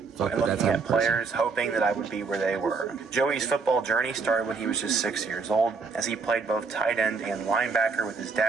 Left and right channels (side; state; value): left; quieter; 4.6 dB